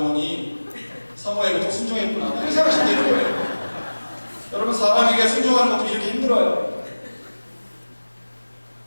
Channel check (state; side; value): inverted; both; correlation -1.00